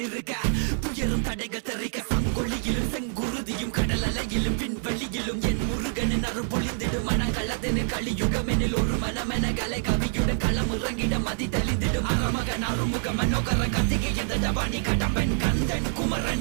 இருக்க துயரும் தடைகள் தெரிக்க சங்கொழியிலும் செங்குருதியும் கடல் அலையிலும் விண்வெளியிலும் என் முருகனின் அருள் பொழிந்திடும் மனங்களதனில் கலியுகமெனில் ஒரு மனமென கலை கவியுடன் களம் இறங்கிட மதி தெளிந்திடும் அறமகன் அருமுக மனோகர கத்திகை எந்த ஜபானி கடம்பன் கந்தன்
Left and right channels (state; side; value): silent; left; 60 dB below the other